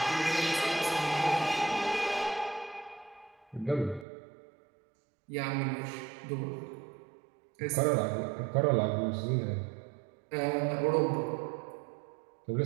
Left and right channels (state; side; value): drops out; left; at 4.0 s